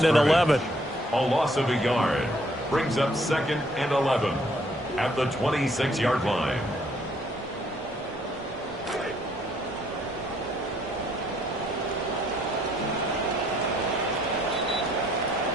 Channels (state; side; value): normal; both; correlation 0.66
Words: and 11. A loss of a yard brings up 2nd and 11 at the 26-yard line.